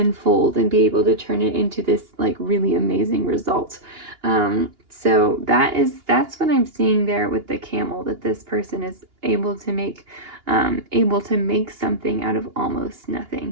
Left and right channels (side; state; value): left; late; 2.9 ms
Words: and be able to turn it into this like really amazing result. So that's what I'm seeing there with the camel, that this person is able to make something out of almost